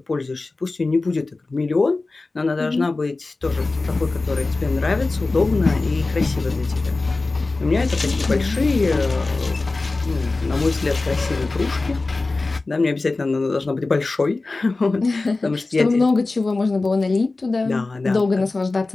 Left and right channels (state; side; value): quieter; right; 3.4 dB